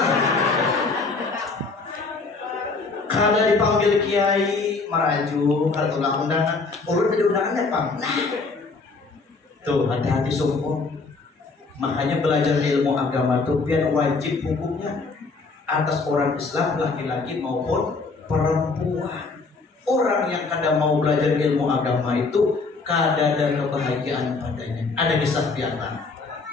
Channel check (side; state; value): right; quieter; 4.1 dB